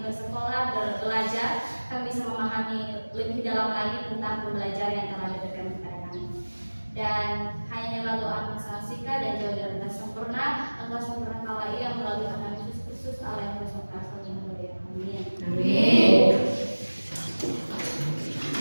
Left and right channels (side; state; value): both; inverted; correlation -1.00